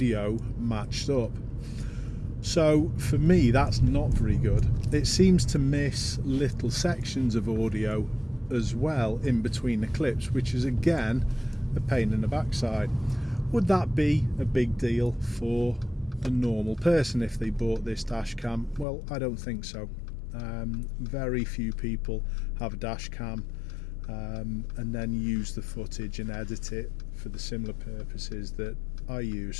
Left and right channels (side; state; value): right; drops out; at 18.9 s